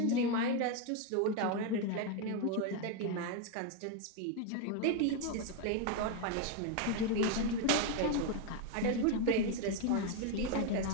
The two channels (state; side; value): different; both; correlation 0.01